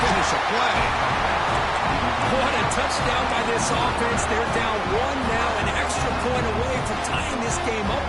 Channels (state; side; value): identical; both; correlation 1.00